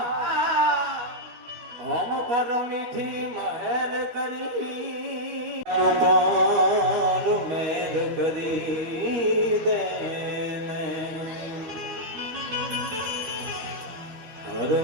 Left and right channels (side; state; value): left; late; 13 ms